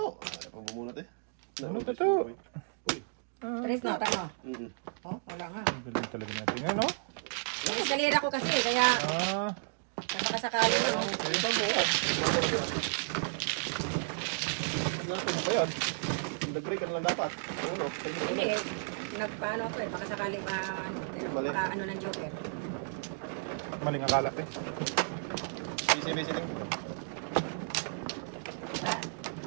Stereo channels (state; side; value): silent; left; digital silence